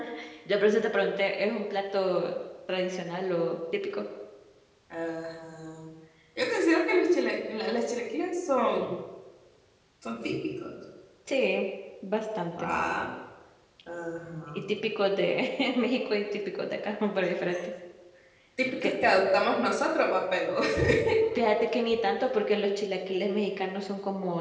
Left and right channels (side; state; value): both; identical; correlation 1.00